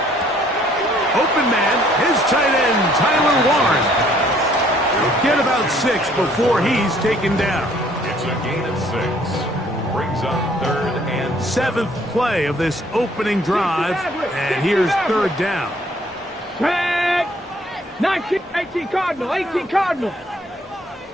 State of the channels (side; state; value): both; normal; correlation 0.61